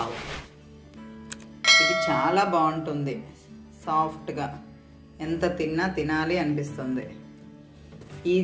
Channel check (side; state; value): both; identical; correlation 1.00